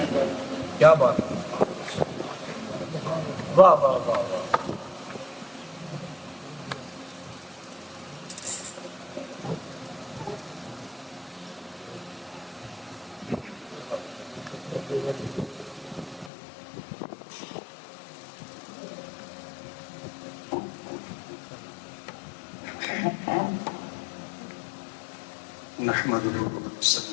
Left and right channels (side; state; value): right; drops out; at 16.3 s